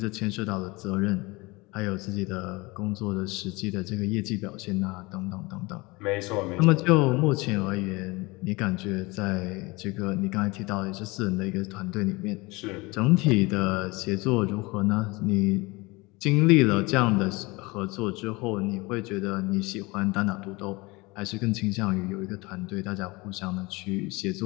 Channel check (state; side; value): quieter; right; 24.0 dB